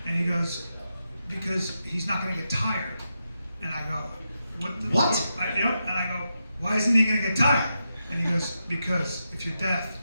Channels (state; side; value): inverted; both; correlation -0.87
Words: And he goes, because he's not gonna get tired. And I go, What? And I go, why isn't he gonna get tired? And he goes, because if you're deaf,